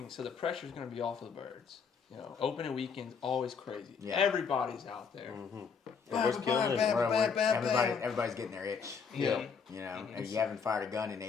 so the pressure's going to be off of the birds. Opening weekend's always crazy. Yeah. Everybody's out there. Everybody's getting their itch. Yeah. And you haven't fired a gun in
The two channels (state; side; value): quieter; right; 6.0 dB